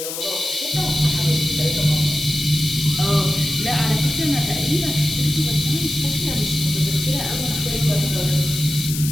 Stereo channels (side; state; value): left; noise; hiss, 6 dB below the sound